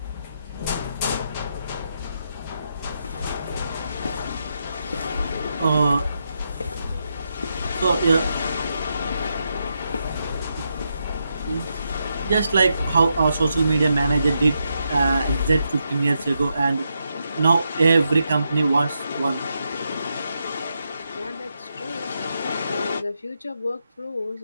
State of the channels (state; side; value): inverted; both; correlation -0.83